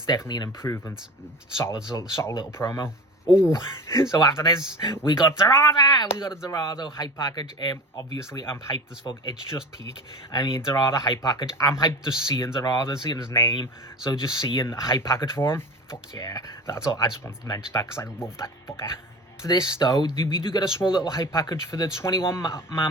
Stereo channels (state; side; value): normal; both; correlation 0.32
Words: definitely an improvement. Solid little promo. Oh, so after this, we got Dorada! We got a Dorado hype package. Obviously, I'm hyped as fuck. It's just peak. I mean, Dorada hype package. I'm hyped just seeing Dorada, seeing his name. So just seeing a hype package for him. Fuck yeah. That's all. I just wanted to mention that because I love that fucker. For this, though, we do get a small little hype package for the